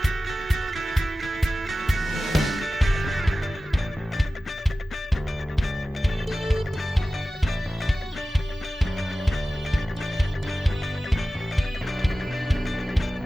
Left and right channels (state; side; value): normal; both; correlation 0.95